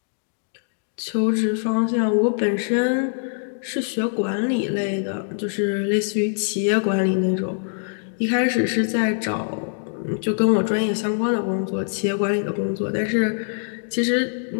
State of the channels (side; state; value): right; silent; digital silence